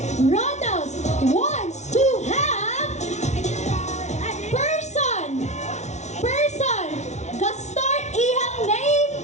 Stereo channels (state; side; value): late; right; 0.33 ms